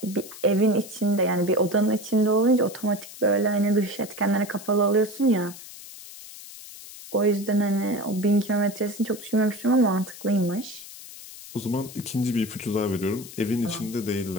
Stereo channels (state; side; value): noise; left; hiss, 15 dB below the sound